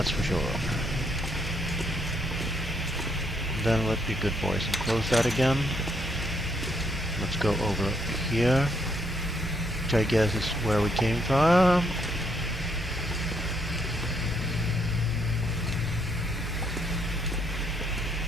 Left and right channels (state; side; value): normal; both; correlation 0.72